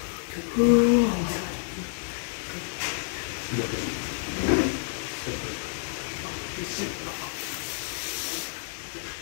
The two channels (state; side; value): silent; right; 59 dB below the other